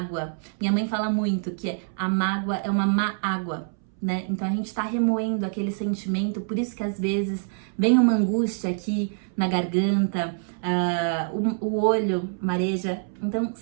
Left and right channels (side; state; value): left; silent; 61 dB below the other